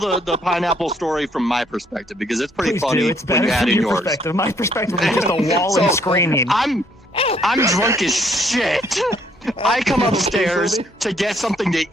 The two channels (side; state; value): both; normal; correlation 0.67